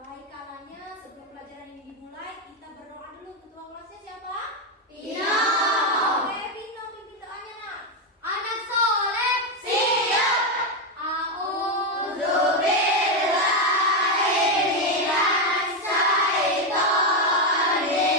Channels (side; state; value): both; normal; correlation 0.06